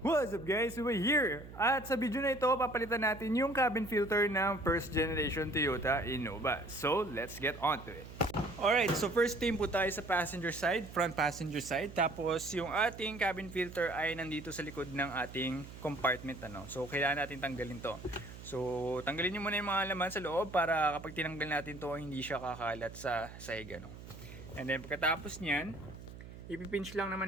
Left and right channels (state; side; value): noise; right; hum, 14 dB below the sound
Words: What's up guys? We're here! At sa video na ito, papalitan natin yung cabin filter ng first generation Toyota Innova. So, let's get on to it. Alright, so first team po tayo sa passenger side, front passenger side. Tapos yung ating cabin filter ay nandito sa likod ng ating compartment. So, kailangan natin tanggalin to. So, tanggalin nyo muna yung mga laman sa loob para kapag tinanggal natin to, hindi siya kakalat sa sahig. And then pagkatapos nyan, ipipinch lang